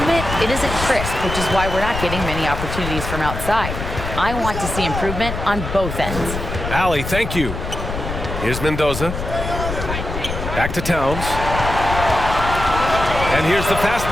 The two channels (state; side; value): noise; left; rumble, 6 dB below the sound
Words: it isn't crisp, which is why we're not getting many opportunities from outside. I want to see improvement on both ends. Allie, thank you. Here's Mendoza. Back to Towns. And here's the fast